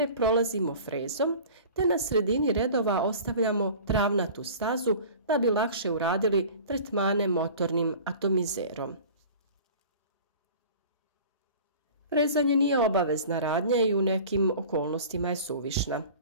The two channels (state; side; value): inverted; both; correlation -0.41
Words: prolazimo frezom, te na sredini redova ostavljamo travnatu stazu da bi lakše uradili tretmane motornim atomizerom. Frezanje nije obavezna radnja i u nekim okolnostima je suvišna.